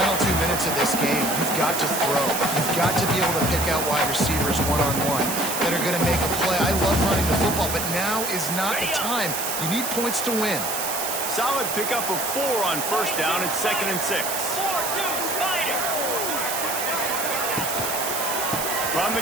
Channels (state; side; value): noise; right; hiss, 3 dB below the sound